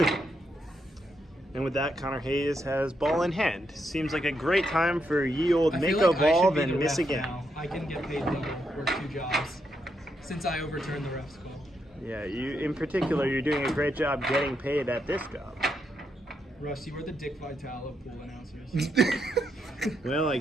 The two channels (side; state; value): both; normal; correlation 0.80